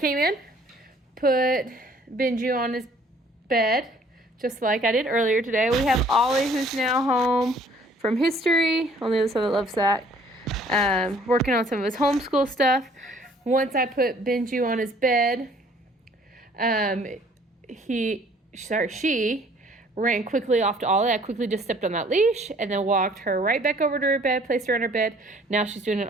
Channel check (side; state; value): both; normal; correlation 0.57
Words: in, put Benji on his bed, just like I did earlier today. We have Ollie, who's now home from history on the other side of the love sack, working on some of his homeschool stuff. Once I put Benji on his bed, she ran quickly off to Ollie. I quickly just stepped on that leash and then walked her right back over to her bed, placed her on her bed. Now she's doing an